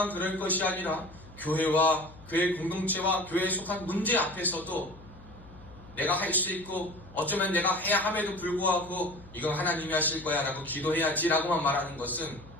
그럴 것이 아니라 교회와 교회 공동체와 교회에 속한 문제 앞에서도 내가 할 수 있고 어쩌면 내가 해야 함에도 불구하고 이건 하나님이 하실 거야 라고 기도해야지 라고만 말하는 것은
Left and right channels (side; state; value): left; noise; hum, 20 dB below the sound